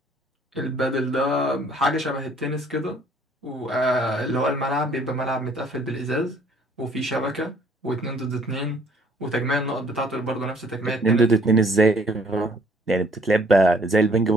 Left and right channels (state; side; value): normal; both; correlation 0.60